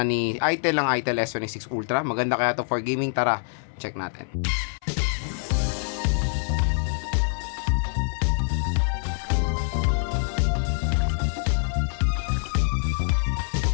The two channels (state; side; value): silent; right; 61 dB below the other